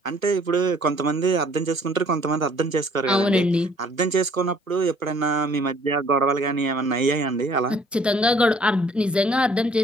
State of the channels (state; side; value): normal; both; correlation 0.58